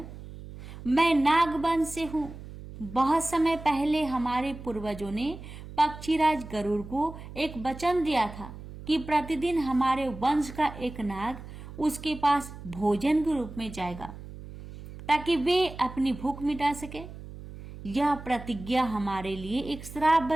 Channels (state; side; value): noise; right; hum, 13 dB below the sound